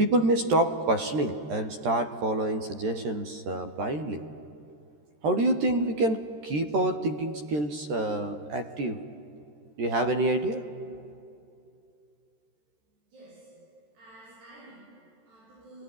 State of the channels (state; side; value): late; left; 13 ms